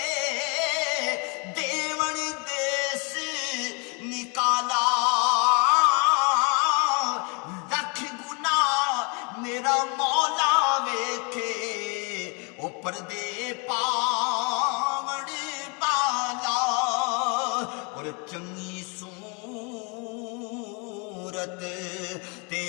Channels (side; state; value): right; quieter; 32.9 dB